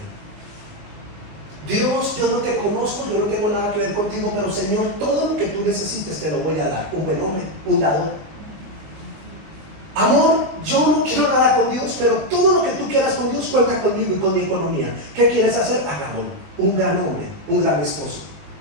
Dios, yo no te conozco, yo no tengo nada que ver contigo, pero Señor, todo lo que tú necesites te lo voy a dar. Un buen hombre, un dador. Amor, yo no quiero nada con Dios, pero todo lo que tú quieras con Dios cuenta conmigo y con mi economía. ¿Qué quieres hacer? Hagámoslo. Un gran hombre, un gran esposo.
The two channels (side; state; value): left; late; 20 ms